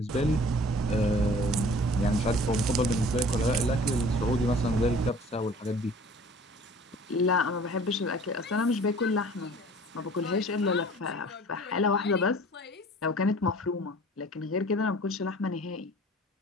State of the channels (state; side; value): normal; both; correlation 0.48